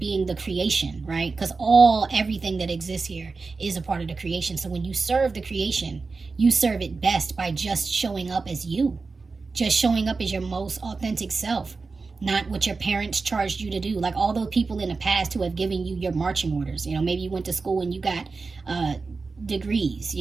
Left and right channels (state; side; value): quieter; left; 4.2 dB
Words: the creation, right? Because everything that exists here is a part of the creation. So when you serve the creation, you serve it best by just showing up as you, just showing up as your most authentic self, not what your parents charged you to do. Like all those people in the past who have given you your marching orders. You know, maybe you went to school and you got degrees,